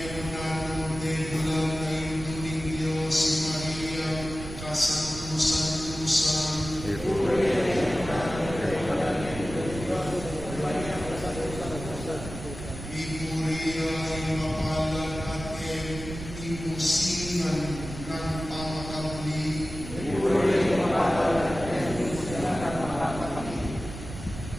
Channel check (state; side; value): noise; right; rumble, 10 dB below the sound